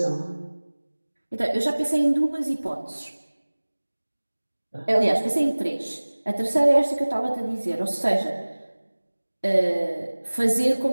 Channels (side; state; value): both; inverted; correlation -1.00